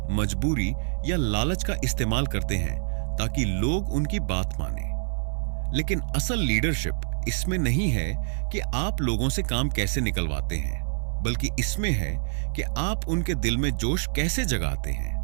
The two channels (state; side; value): silent; left; digital silence